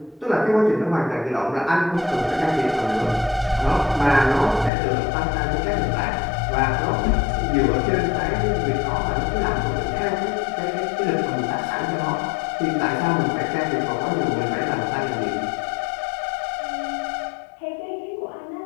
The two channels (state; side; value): drops out; right; at 4.7 s